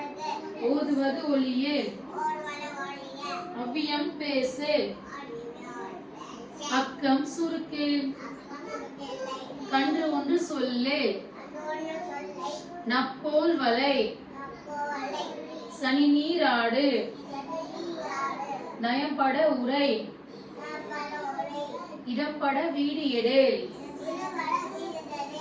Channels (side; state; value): both; identical; correlation 1.00